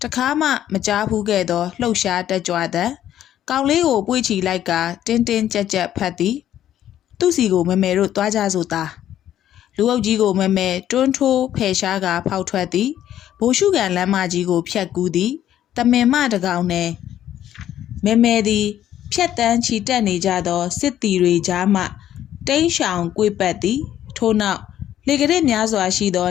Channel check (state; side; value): quieter; right; 11.5 dB